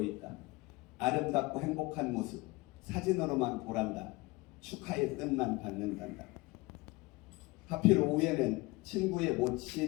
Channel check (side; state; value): right; quieter; 23.2 dB